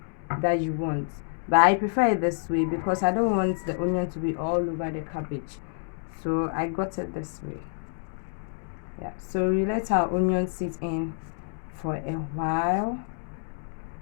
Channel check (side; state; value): right; silent; digital silence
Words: that you want, but I prefer it this way because I don't want the onion to be all over the cabbage. So I got it this way. Yeah, so we let our onion sit in for a while,